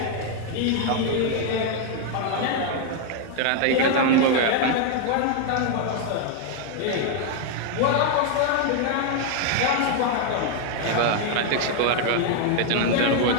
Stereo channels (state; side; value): different; both; correlation 0.01